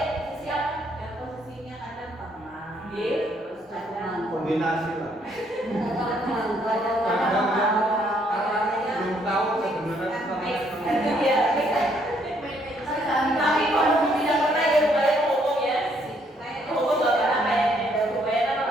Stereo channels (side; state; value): both; normal; correlation 0.69